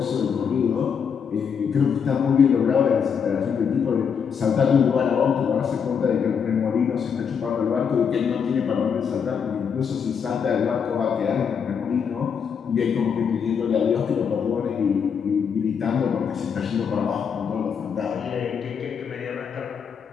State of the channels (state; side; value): quieter; right; 6.9 dB